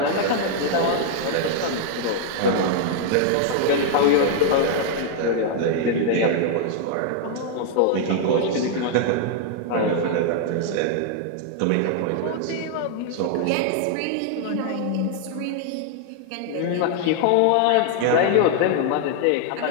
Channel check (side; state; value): both; different; correlation 0.00